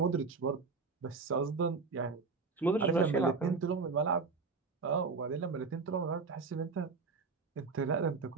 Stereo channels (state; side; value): quieter; left; 4.6 dB